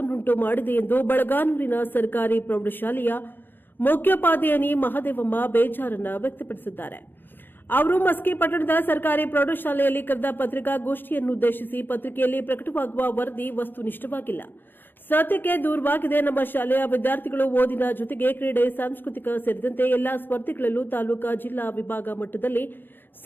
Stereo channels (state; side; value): late; right; 0.096 ms